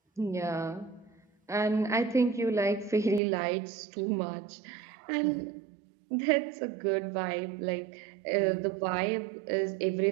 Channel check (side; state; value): left; drops out; at 3.2 s